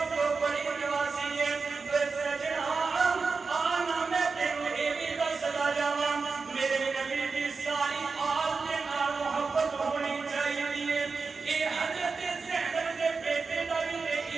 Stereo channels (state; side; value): quieter; left; 4.6 dB